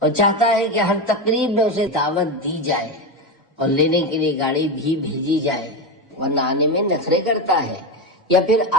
اور چاہتا ہے کہ ہر تقریب میں اسے دعوت دی جائے اور لینے کے لیے گاڑی بھی بھیجی جائے، ورنہ آنے میں نخرے کرتا ہے یا پھر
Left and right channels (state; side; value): normal; both; correlation 0.16